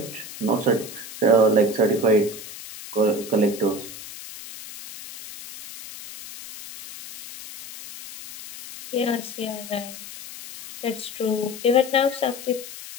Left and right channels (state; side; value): noise; left; hiss, 13 dB below the sound